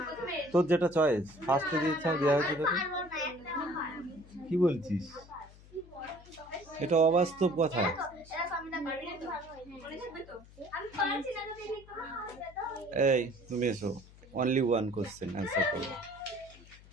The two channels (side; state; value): left; noise; hum, 22 dB below the sound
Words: তোর যেটা চয়েস ফার্স্টে যে ইচ্ছা দেওয়া হয়েছে তোকে। পারবো না, একটা পারবো। কি বলছিস? এটা অবাস্তব কথা। এই তুমি এসো, অনলি ওয়ান কোশ্চেন অ্যান্সার করবে।